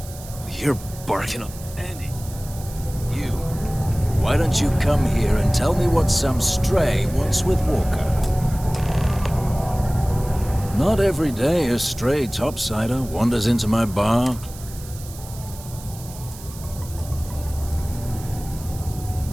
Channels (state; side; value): noise; right; hiss, 17 dB below the sound